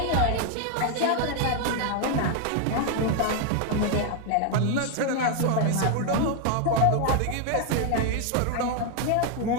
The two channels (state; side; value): different; both; correlation 0.01